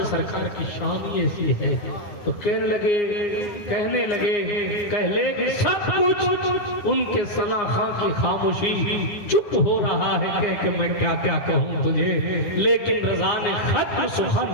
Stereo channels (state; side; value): late; right; 9.7 ms